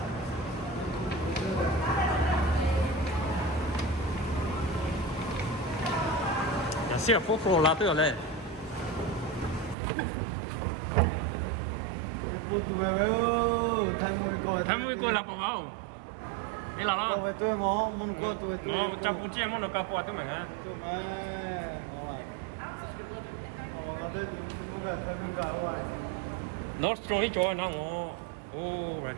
xe phố phố là tới rồi tham mui coi là bao không đây là lo tôi ngó muốn coi tôi ngó chăm bút chia muốn nó cao qua tôi mình á Nostro đi chơi nó ngó oh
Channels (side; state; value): left; drops out; at 9.8 s